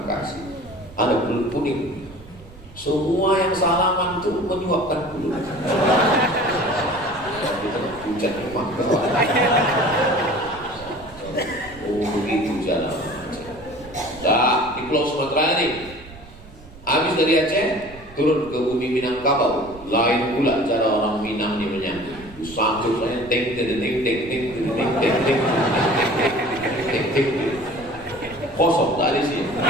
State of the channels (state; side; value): noise; right; rumble, 19 dB below the sound